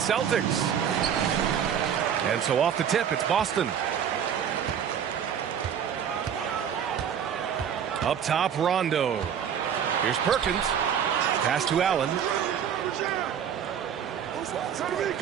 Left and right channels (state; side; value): quieter; left; 8.5 dB